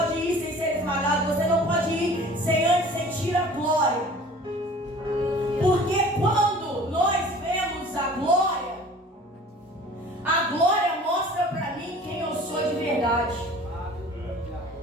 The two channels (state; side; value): normal; both; correlation 0.46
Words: ir sem ser esmagado, você não pode ir sem antes sentir a glória. Porque quando nós vemos a glória mostra para mim quem eu sou de verdade.